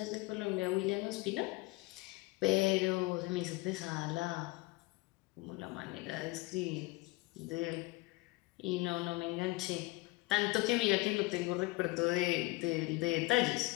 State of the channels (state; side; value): quieter; right; 22.4 dB